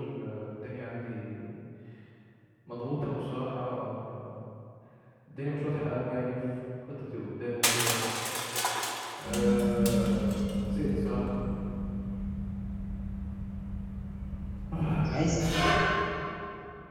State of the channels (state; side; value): identical; both; correlation 1.00